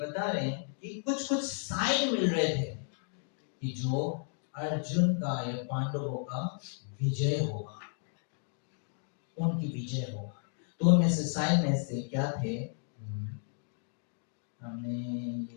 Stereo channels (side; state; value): right; silent; 56 dB below the other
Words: बता रहे हैं कि कुछ कुछ साइन मिल रहे थे कि जो अर्जुन का या पांडवों का विजय होगा, उनकी विजय होगा। तो उनमें से साइन में से क्या थे हमने ये